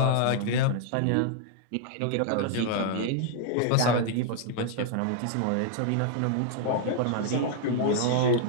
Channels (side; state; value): both; different; correlation -0.01